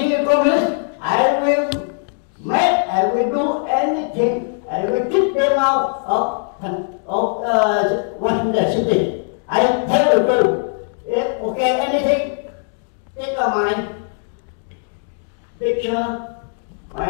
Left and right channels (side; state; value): right; silent; digital silence